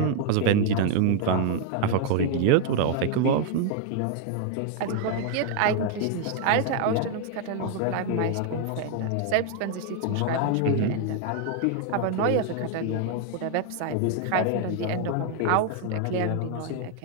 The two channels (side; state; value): both; different; correlation 0.00